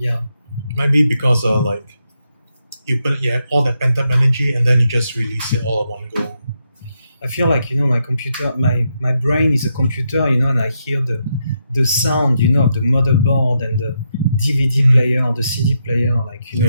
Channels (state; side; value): inverted; both; correlation -0.82